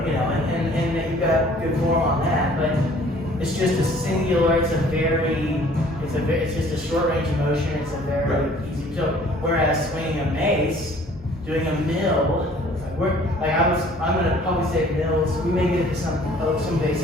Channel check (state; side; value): normal; both; correlation 0.54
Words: you know, and that you've got good form on that. But it's just a singular. It's just a short range of motion. It's a very easy. So whereas swinging a mace, doing a mill, I'm going to probably say mills. We may get into some